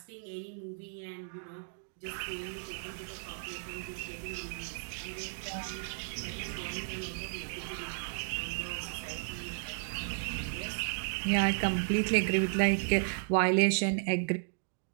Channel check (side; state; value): left; silent; digital silence